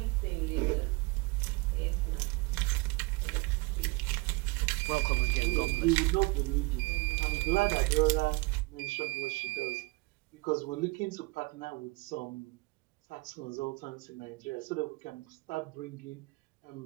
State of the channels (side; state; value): left; quieter; 25.9 dB